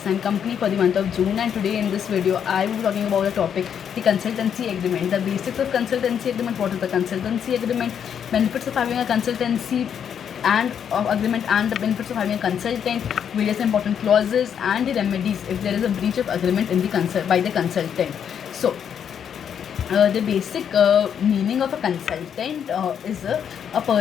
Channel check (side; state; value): right; quieter; 8.2 dB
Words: and Company for the month of June, and today in this video I will be talking about a topic, the consultancy agreement, the basics of consultancy agreement, what is the consultancy agreement, benefits of having a consultancy and agreement and the benefits of having a consultant, various important clauses and the remedies if there is a breach of agreement in the by the consultant. So the basic meaning of a consultant is a